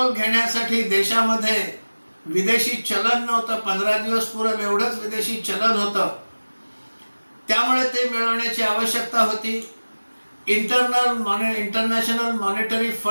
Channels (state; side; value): inverted; both; correlation -1.00